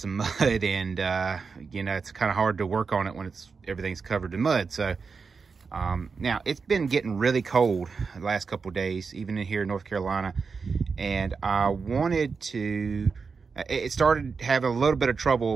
mud, and you know, it's kind of hard to work on it when everything's covered in mud. So now it's been getting really cold the last couple of days, even in here in North Carolina. And I wanted to, it started having a little bit of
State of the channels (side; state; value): left; quieter; 5.1 dB